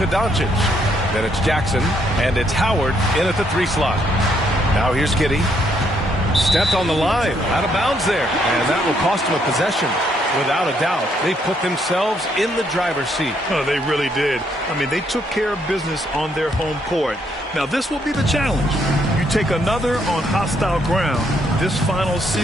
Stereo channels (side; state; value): both; normal; correlation 0.72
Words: Doncic. Then it's Jackson, and it's Howard in at the 3 slot. Now here's Giddey. Stepped on the line, out of bounds there, and that will cost him a possession. Without a doubt, they put themselves in the driver's seat. Oh, they really did. I mean, they took care of business on their home court. Now, this will be the challenge. You take another on hostile ground, this final